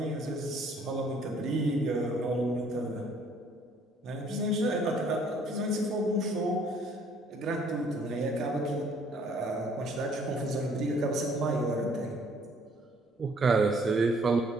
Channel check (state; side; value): normal; both; correlation 0.61